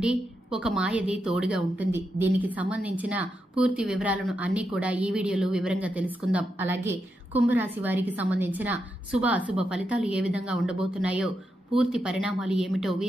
ఒక మాయది తోడుగా ఉంటుంది. దీనికి సంబంధించిన పూర్తి వివరాలను అన్ని కూడా ఈ వీడియోలో వివరంగా తెలుసుకుందాం. అలాగే కుంభరాశి వారికి సంబంధించిన శుభ అశుభ ఫలితాలు ఏ విధంగా ఉండబోతున్నాయో, పూర్తి పరిణామాలు ఏమిటో,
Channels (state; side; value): normal; both; correlation 0.85